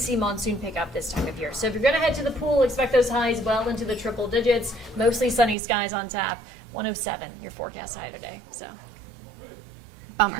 monsoon pick up this time of year. So if you're going to head to the pool, expect those highs well into the triple digits, mostly sunny skies on tap. 107, your forecast high today. So.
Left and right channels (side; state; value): left; drops out; at 5.6 s